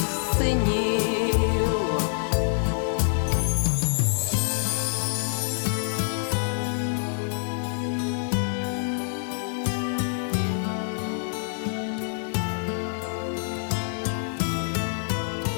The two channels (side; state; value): right; silent; digital silence